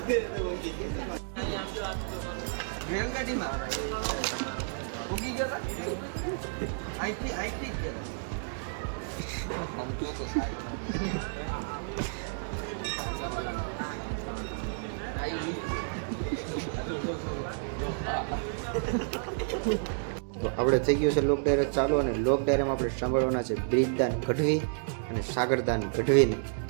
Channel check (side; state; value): left; silent; digital silence